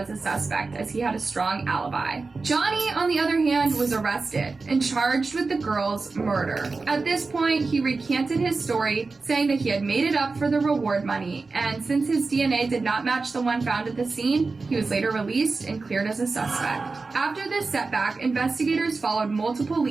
a suspect as he had a strong alibi. Johnny, on the other hand, was arrested and charged with the girl's murder. At this point, he recanted his story, saying that he had made it up for the reward money, and since his DNA did not match the one found at the scene, he was later released and cleared as a suspect. After this setback, investigators followed multiple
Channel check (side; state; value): left; quieter; 4.0 dB